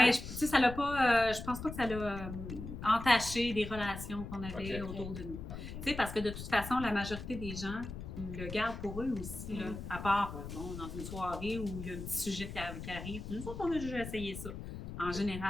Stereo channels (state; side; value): noise; left; rumble, 9 dB below the sound